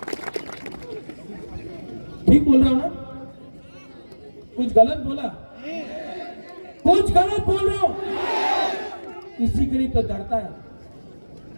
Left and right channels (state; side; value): inverted; both; correlation -1.00